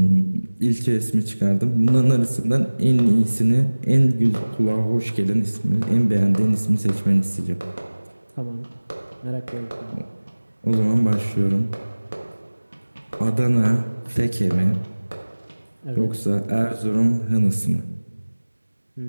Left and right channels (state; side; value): inverted; both; correlation -1.00